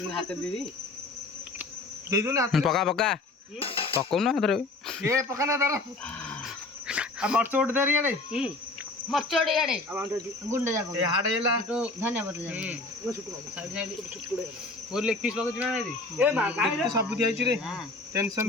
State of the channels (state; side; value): quieter; right; 3.2 dB